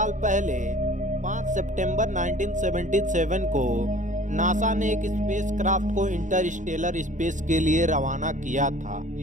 पहले 5 सितंबर 1977 को नासा ने एक स्पेसक्राफ्ट को इंटरस्टेलर स्पेस के लिए रवाना किया था।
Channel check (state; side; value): late; left; 0.36 ms